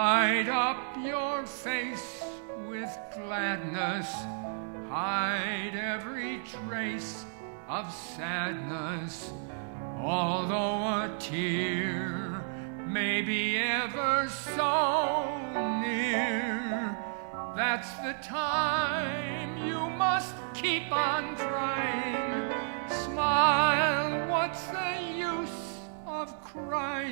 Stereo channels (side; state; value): left; silent; 57 dB below the other